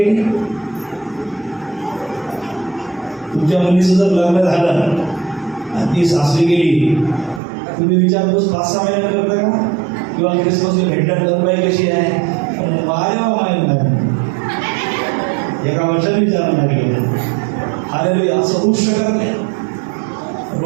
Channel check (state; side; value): drops out; left; at 7.4 s